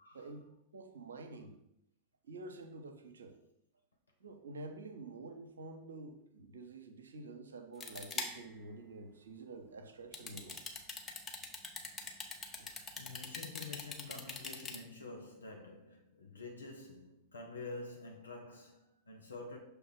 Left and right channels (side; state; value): both; normal; correlation -0.04